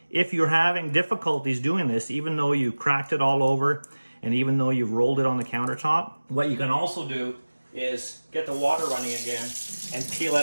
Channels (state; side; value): inverted; both; correlation -1.00